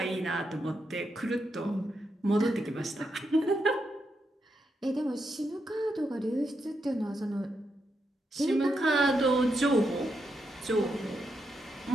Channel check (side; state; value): both; normal; correlation 0.83